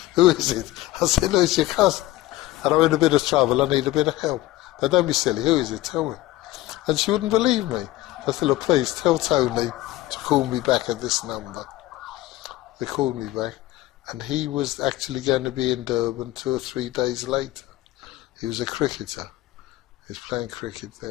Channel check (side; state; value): right; quieter; 16.5 dB